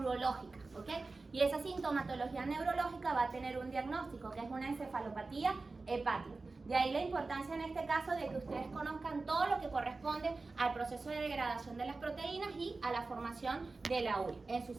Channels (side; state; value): left; quieter; 3.7 dB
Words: ¿ok? Y esa sintomatología neurológica va a tener un diagnóstico, que es una encefalopatía hepática. De ahí la importancia en este caso de que ustedes conozcan todo lo que corresponde al proceso de degradación de las proteínas y a la formación de la urea, en su